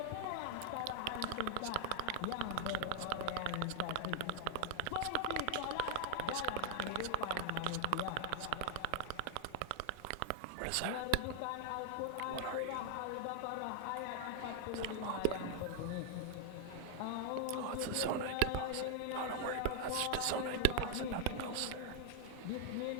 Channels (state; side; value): different; both; correlation 0.00